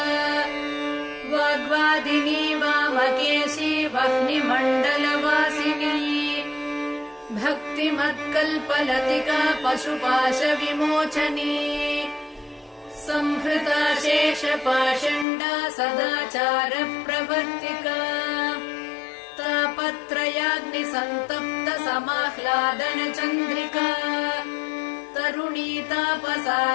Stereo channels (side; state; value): right; drops out; at 15.2 s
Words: वाग्वादिनी वामकेशी वह्निमण्डलवासिनी भक्तिमत्कल्पलतिका पशुपाशविमोचनी संहृता शेषपाषण्डा सदाचारप्रवर्तिका तापत्रयाग्निसन्तप्त समाह्लादनचन्द्रिका तरुणी